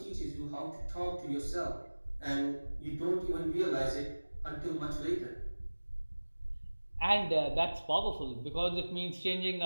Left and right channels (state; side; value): inverted; both; correlation -1.00